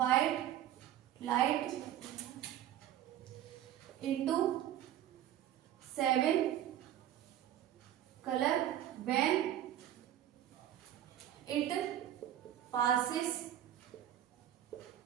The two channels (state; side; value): quieter; left; 11.7 dB